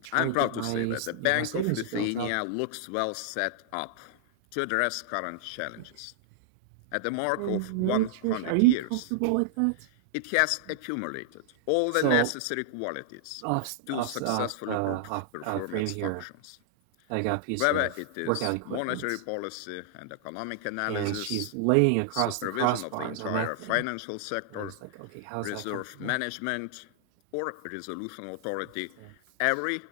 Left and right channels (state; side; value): different; both; correlation -0.01